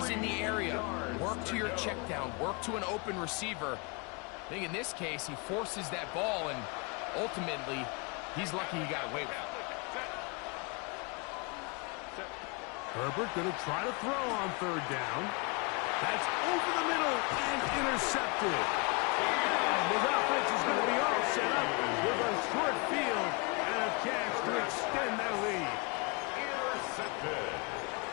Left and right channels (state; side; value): quieter; right; 30.7 dB